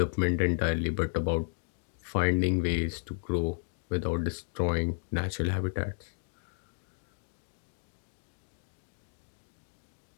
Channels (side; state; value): right; silent; digital silence